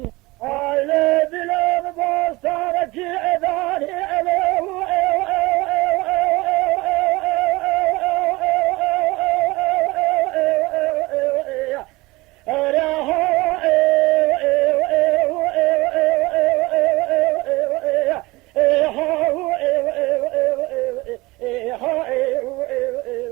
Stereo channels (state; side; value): quieter; left; 21.7 dB